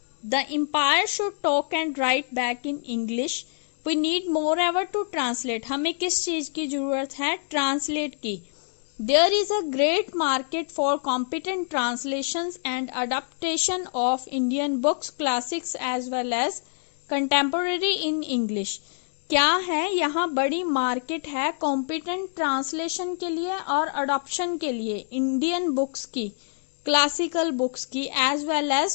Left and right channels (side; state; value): right; silent; digital silence